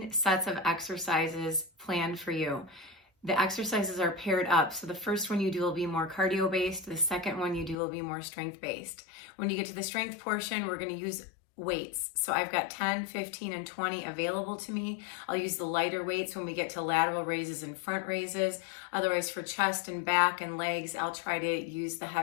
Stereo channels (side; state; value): right; drops out; at 7.8 s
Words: sets of exercises planned for you. The exercises are paired up, so the first one you do will be more cardio-based, the second one you do will be more strength-based. When you get to the strength portion, we're going to use weights. So I've got 10, 15, and 20 available to me. I'll use the lighter weights when we get to lateral raises and front raises. Otherwise, for chest and back and legs, I'll try to use the